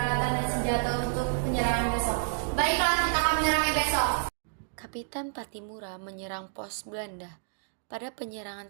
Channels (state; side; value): silent; left; digital silence